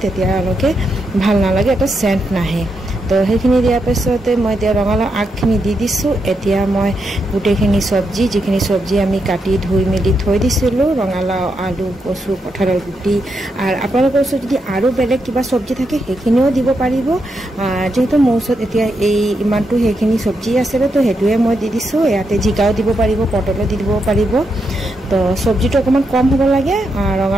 তেতিয়ালৈকে ভাল নালাগে, এটা চেণ্ট নাহে। তো সেইখিনি দিয়াৰ পিছতে মই এতিয়া ৰঙালাও আগখিনি দি দিছোঁ। এতিয়া মই গোটেইখিনি চব্জি, যিখিনি চব্জি আমি কাটি ধুই মেলি থৈ দিছিলোঁ, ৰঙালাও, আলু, কচু, কঁঠালৰ গুটি, আৰু আপোনালোকৰ ওচৰত যদি আৰু বেলেগ কিবা চব্জি থাকে সেইখিনিও দিব পাৰিব। যিহেতু মোৰ ওচৰত এতিয়া ইমানটো সেইখিনি চব্জি আছিলে, তো সেইটোৱে মই দি দিছোঁ। ইয়াতে জিকাও দিব পাৰিব, পটলো দি দিব পাৰিব। তো চব্জিটো অকণমান কম হ'ব লাগে,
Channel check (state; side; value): normal; both; correlation 0.83